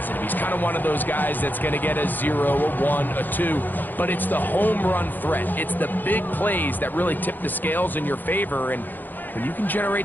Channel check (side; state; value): right; late; 0.088 ms